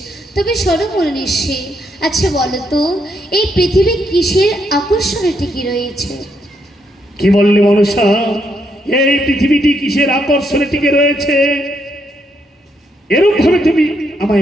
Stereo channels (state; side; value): normal; both; correlation 0.76